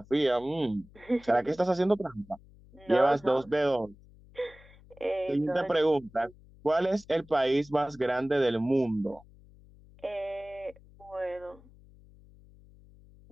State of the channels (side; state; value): left; noise; hum, 24 dB below the sound